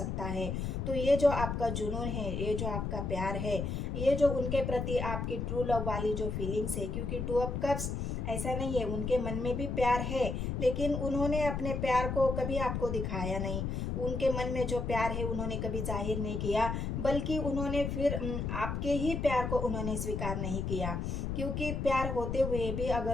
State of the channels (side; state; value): left; noise; rumble, 2 dB below the sound